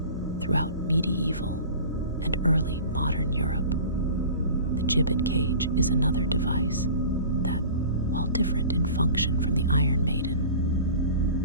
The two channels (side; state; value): both; inverted; correlation -0.40